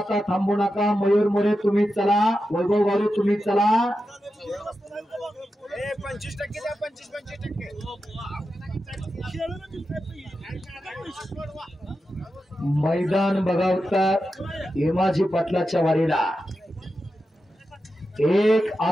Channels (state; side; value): normal; both; correlation 0.90